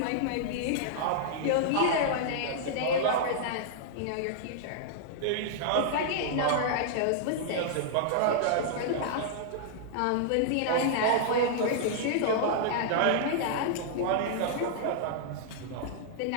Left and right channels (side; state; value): both; different; correlation -0.01